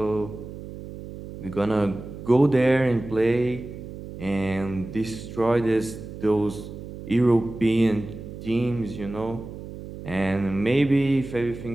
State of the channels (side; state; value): right; noise; hum, 12 dB below the sound